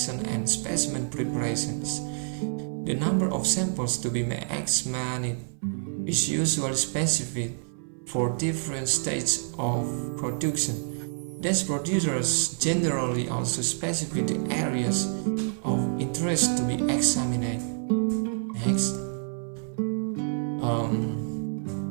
and specimen preparations. The number of samples to be examined is usually specified for different stages of production. Thus, producers generally also specify the areas of interest to be examined. Next,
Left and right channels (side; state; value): left; silent; 57 dB below the other